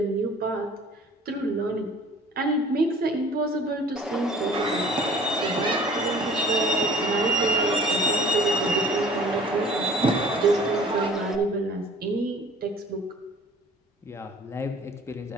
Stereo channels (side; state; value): both; normal; correlation 0.49